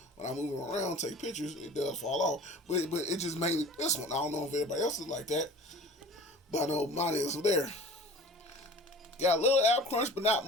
when I move it around, take pictures. It does fall off, but it just mainly this one. I don't know if everybody else is like that, but I know mine is there. Got a little ab crunch, but not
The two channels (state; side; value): normal; both; correlation 0.43